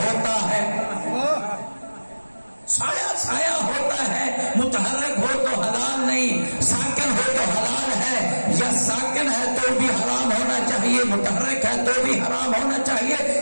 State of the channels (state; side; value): inverted; both; correlation -1.00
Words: ہے، سایہ سایہ ہوتا ہے، متحرک ہو تو حلال نہیں، ساکن ہو تو حلال ہے، یا ساکن ہے تو بھی حرام ہونا چاہیے، متحرک ہے تو بھی حرام ہونا چاہیے،